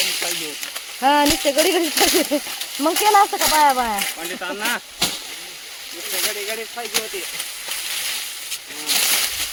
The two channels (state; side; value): identical; both; correlation 1.00